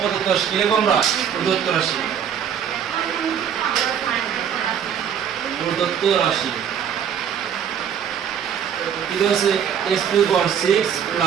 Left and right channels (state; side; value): quieter; left; 8.3 dB